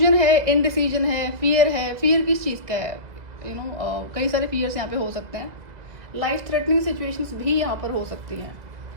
है, इनडिसीजन है, फियर है। फियर किस चीज़ का है? कई सारे फियर्स यहाँ पे हो सकते हैं। लाइफ थ्रेटनिंग सिचुएशंस भी यहाँ पर हो सकती हैं।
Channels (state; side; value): late; left; 2.0 ms